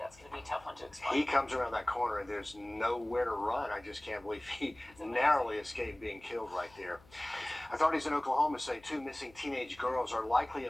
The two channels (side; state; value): left; noise; hum, 26 dB below the sound